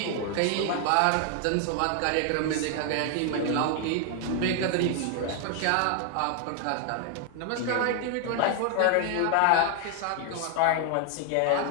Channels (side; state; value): both; different; correlation 0.00